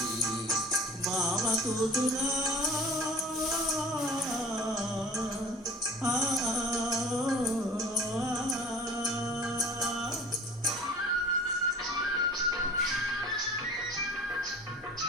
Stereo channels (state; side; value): normal; both; correlation 0.43